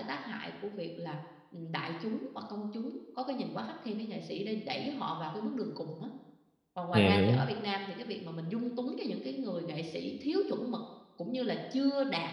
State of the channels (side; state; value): both; identical; correlation 1.00